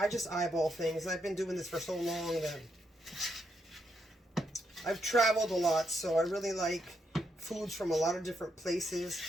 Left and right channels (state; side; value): normal; both; correlation 0.79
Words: just eyeball things. I've been doing this for so long that I've traveled a lot, so I really like foods from a lot of different places.